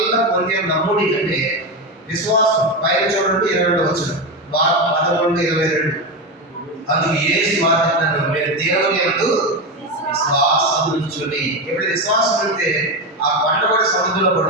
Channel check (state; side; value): normal; both; correlation 0.15